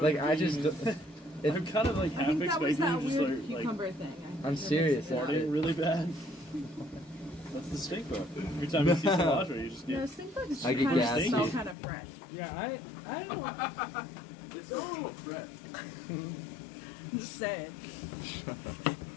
like I just. I'm kind of like I half think that was expecting that you just weird like cucumber thing. I'm serious. farting really bad. That's the stink bug. Every time you see cilantro, you just No, get. stink bugs I get kind of gassy. smell kind of fresh. Yeah, I don't know. It's a little fresh. I'm just saying.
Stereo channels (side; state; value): right; drops out; at 11.8 s